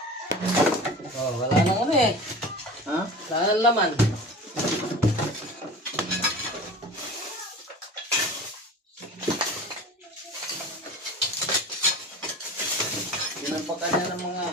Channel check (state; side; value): normal; both; correlation 0.37